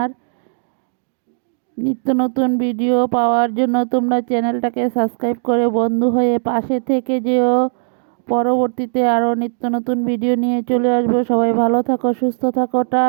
নিত্য নতুন ভিডিও পাওয়ার জন্য তোমরা চ্যানেলটাকে সাবস্ক্রাইব করে বন্ধু হয়ে পাশে থেকে যেও। পরবর্তীতে আরও নিত্য নতুন ভিডিও নিয়ে চলে আসবো। সবাই ভালো থাকো, সুস্থ থাকো,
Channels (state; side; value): silent; left; digital silence